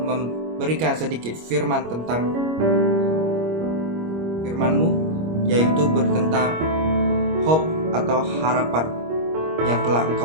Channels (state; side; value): late; left; 25 ms